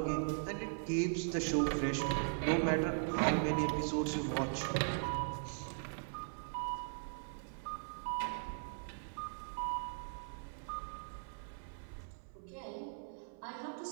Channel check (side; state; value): left; silent; 52 dB below the other